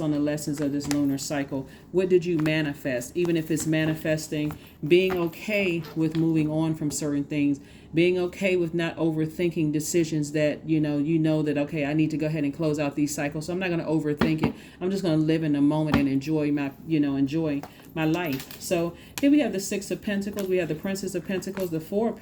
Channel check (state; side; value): identical; both; correlation 1.00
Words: on the lessons of this lunar cycle. What did you manifest? Even if it's manifesting, being okay with moving on from certain things, being okay with not overthinking decisions that, you know that, okay, I need to go ahead and close out these cycles. So I'm not going to overthink it. I'm just going to live in the moment and enjoy my life. So here we have the Six of Pentacles. We have the Princess of Pentacles, the Four of